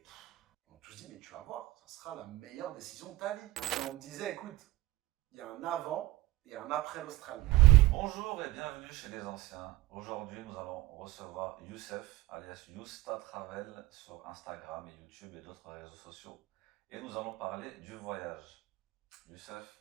On m'a tous dit, mais tu vas voir, ça sera la meilleure décision de ta vie. Et on me disait, écoute, il y a un avant et un après l'Australie. Bonjour et bienvenue chez les anciens. Aujourd'hui, nous allons recevoir Youssef, alias Yousta Travel, sur Instagram et YouTube et d'autres réseaux sociaux. Et nous allons parler du voyage. Youssef,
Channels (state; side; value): quieter; left; 17.4 dB